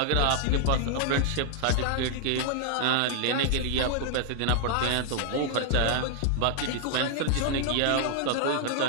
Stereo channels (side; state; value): both; different; correlation 0.00